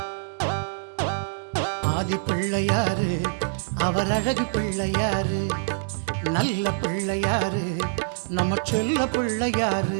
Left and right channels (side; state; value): left; silent; digital silence